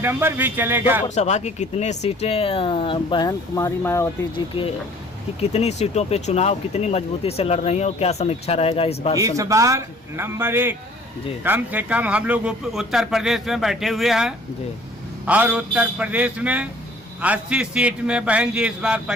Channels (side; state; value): both; normal; correlation 0.53